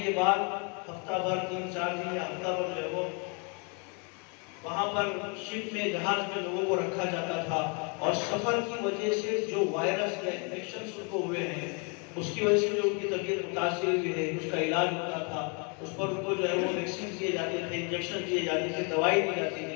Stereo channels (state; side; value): quieter; right; 34.7 dB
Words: بعد ہفتہ بھر، 3-4 دن یا ہفتہ بھر جو وہ وہاں پر شپ میں، جہاز میں لوگوں کو رکھا جاتا تھا، اور سفر کی وجہ سے جو وائرس یا انفیکشنز ان کو ہوئے ہیں اس کی وجہ سے جو ان کی طبیعت متاثر ہوئی ہے، اس کا علاج ہوتا تھا، اس پر ان کو جو ہے وہ ویکسین دیے جاتے تھے، انجیکشن دیے جاتے تھے، دوائی دی جاتی